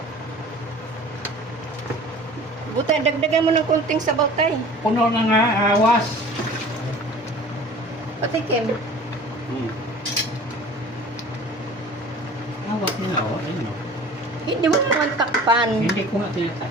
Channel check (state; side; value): normal; both; correlation 0.44